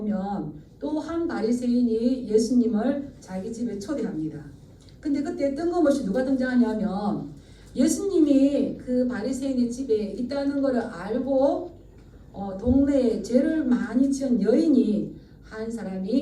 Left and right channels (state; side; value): identical; both; correlation 1.00